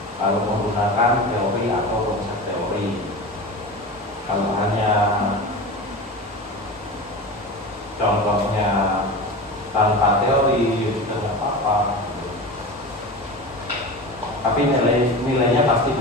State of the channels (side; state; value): both; normal; correlation 0.29